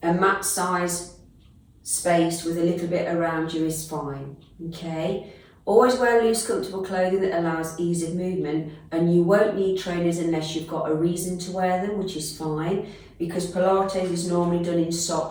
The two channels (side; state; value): both; identical; correlation 1.00